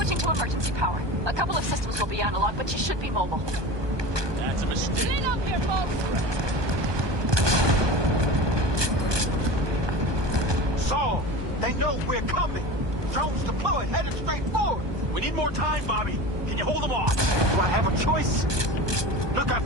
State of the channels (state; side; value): late; left; 1.2 ms